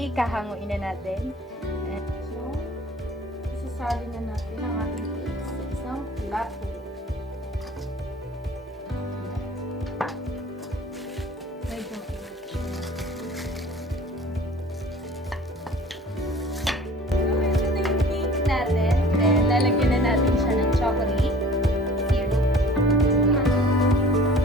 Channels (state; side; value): normal; both; correlation 0.47